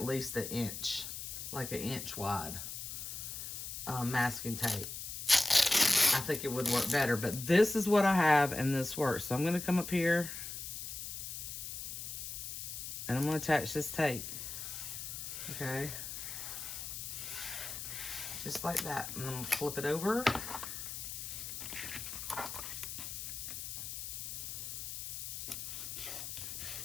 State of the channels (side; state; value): left; noise; hiss, 6 dB below the sound